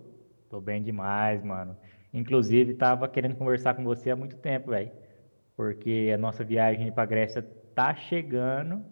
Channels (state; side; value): inverted; both; correlation -1.00